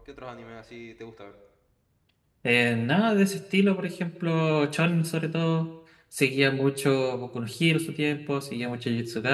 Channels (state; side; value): identical; both; correlation 1.00